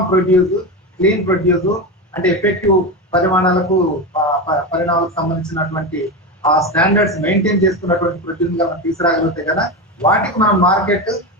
ప్రొడ్యూస్, క్లీన్ ప్రొడ్యూస్ అంటే ఎఫెక్టివ్ పరిణామాలకు సంబంధించినటువంటి ఆ స్టాండర్డ్స్ మెయింటైన్ చేసుకున్నటువంటి ప్రొడ్యూస్ గా మనం తీసుకురాగలిగితే కదా వాటికి మనం మార్కెట్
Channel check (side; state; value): both; normal; correlation 0.18